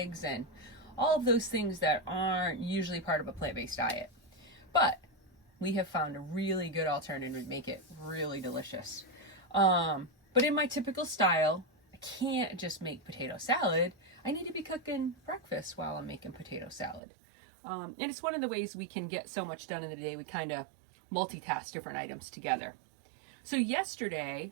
and all of those things that aren't usually part of a plant-based diet. But we have found a really good alternative to make it really delicious. But in my typical style, I can't just make potato salad. I need to be cooking breakfast while I'm making potato salad. And it's one of the ways we can get so much done in the day. We kind of multitask different items together. So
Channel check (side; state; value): left; drops out; at 17.0 s